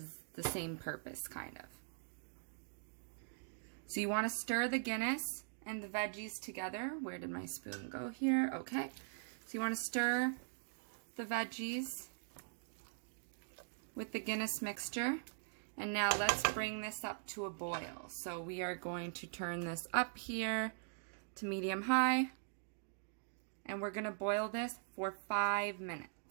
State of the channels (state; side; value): silent; left; digital silence